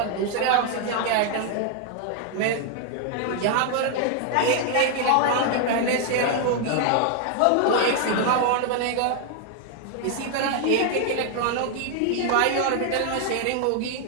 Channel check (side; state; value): both; different; correlation 0.00